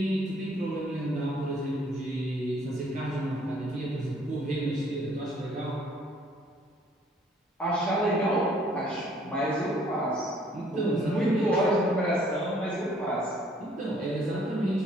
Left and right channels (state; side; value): normal; both; correlation 0.61